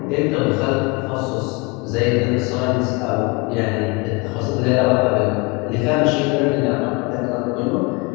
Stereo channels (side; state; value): right; quieter; 27.9 dB